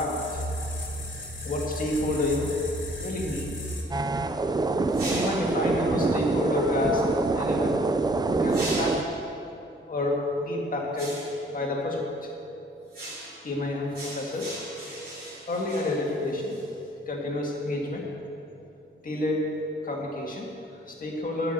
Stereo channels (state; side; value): normal; both; correlation 0.56